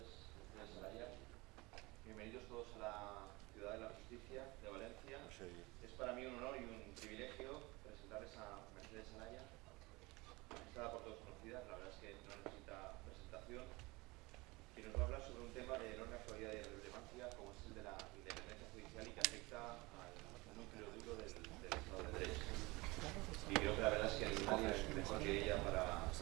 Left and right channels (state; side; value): quieter; left; 23.4 dB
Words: desde Salaya. Bienvenidos todos a la Ciudad de la Justicia de Valencia. Es para mí un honor y un privilegio presentarles a Mercedes Salaya, está por todos conocida, la verdad es que no necesita presentación, que nos va a hablar sobre un tema de enorme actualidad y relevancia como es el de la independencia judicial y que afecta al núcleo duro del Estado de Derecho. Y creo que la verdad es que nadie es mejor que ella para